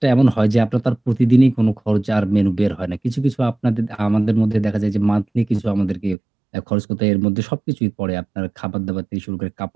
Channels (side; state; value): left; drops out; at 6.2 s